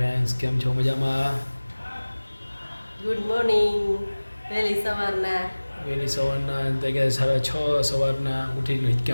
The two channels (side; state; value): both; inverted; correlation -1.00